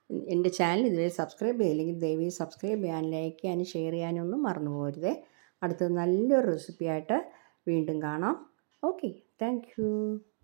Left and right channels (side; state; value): left; silent; digital silence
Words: എൻ്റെ ചാനൽ ഇതുവരെ സബ്സ്ക്രൈബ് ചെയ്തില്ലെങ്കിൽ ദയവായി സബ്സ്ക്രൈബ് ചെയ്യാനും ലൈക്ക് ചെയ്യാനും ഷെയർ ചെയ്യാനൊന്നും മറന്നു പോകരുതേ. അടുത്തത് നല്ലൊരു റെസിപ്പിയായിട്ട് വീണ്ടും കാണാം. Okay, thank you.